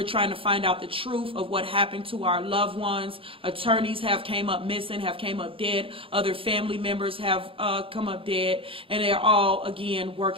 trying to find out the truth of what happened to our loved ones. Attorneys have came up missing, have came up dead. Other family members have come up dead, and they're all, again,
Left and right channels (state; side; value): late; left; 0.26 ms